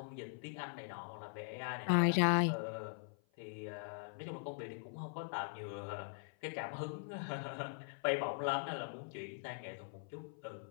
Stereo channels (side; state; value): right; silent; 50 dB below the other